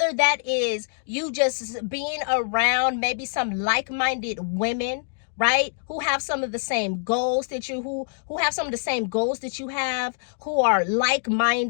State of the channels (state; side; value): silent; right; digital silence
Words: that is you just being around maybe some like-minded women, right? Who have some of the same goals that you, who have some of the same goals that you have, who are